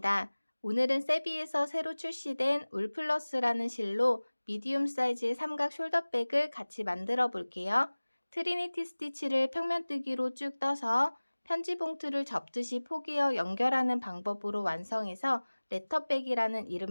오늘은 세비에서 새로 출시된 울플러스라는 실로 미디움 사이즈의 삼각 숄더백을 같이 만들어 볼게요. 트리니티 스티치를 평면뜨기로 쭉 떠서 편지 봉투를 접듯이 포개어 연결하는 방법으로 완성해서 레터백이라는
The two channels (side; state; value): both; inverted; correlation -1.00